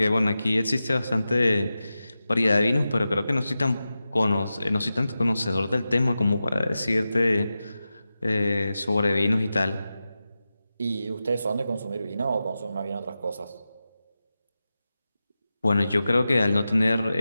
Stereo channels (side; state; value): both; inverted; correlation -0.93